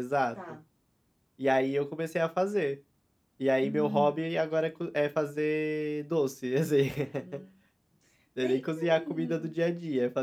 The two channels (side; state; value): both; identical; correlation 1.00